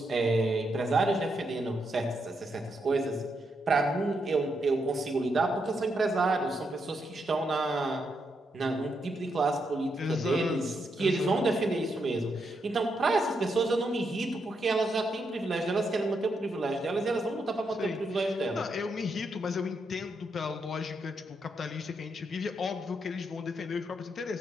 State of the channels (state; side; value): normal; both; correlation 0.80